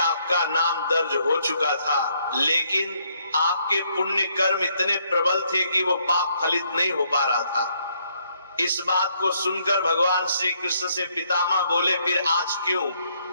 नाम दर्ज हो चुका था, लेकिन आपके पुण्य कर्म इतने प्रबल थे कि वो पाप फलित नहीं हो पा रहा था। इस बात को सुनकर भगवान श्री कृष्ण से पितामह बोले, फिर आज क्यों?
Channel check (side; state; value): both; inverted; correlation -0.71